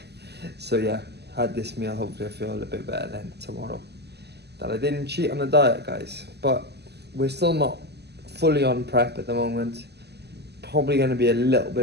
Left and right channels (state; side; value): late; left; 0.48 ms